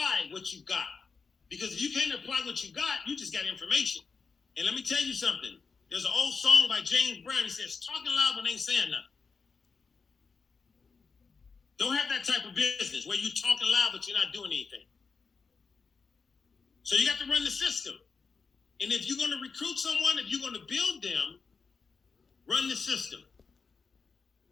what you got. Because if you can't apply what you got, you just got information. And let me tell you something. There's an old song by James Brown. He says, talking loud but ain't saying nothing. Don't have that type of business where you're talking loud but you're not doing anything. So you got to run the system. And if you're going to recruit someone, if you're going to build them, run the system.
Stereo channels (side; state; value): right; quieter; 5.0 dB